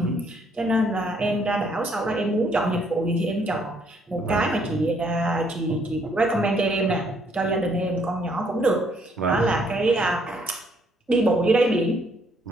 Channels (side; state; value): both; normal; correlation 0.68